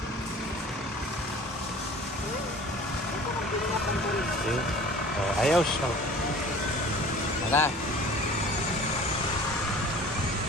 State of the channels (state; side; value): normal; both; correlation 0.45